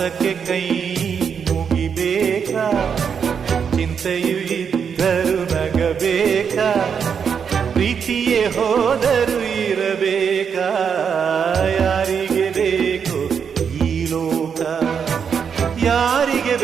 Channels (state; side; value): quieter; left; 6.9 dB